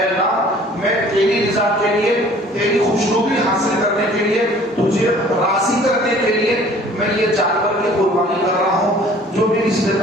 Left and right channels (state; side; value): normal; both; correlation 0.52